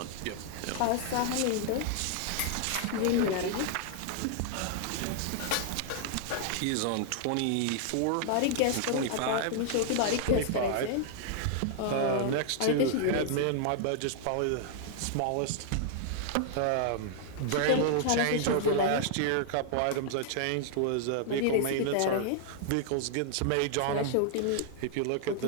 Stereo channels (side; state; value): both; different; correlation 0.00